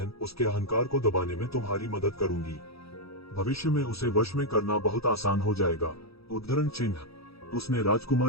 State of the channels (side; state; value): right; late; 0.77 ms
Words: उसके अहंकार को दबाने में तुम्हारी मदद करूंगी। भविष्य में उसे वश में करना बहुत आसान हो जाएगा। उद्धरण चिन्ह। उसने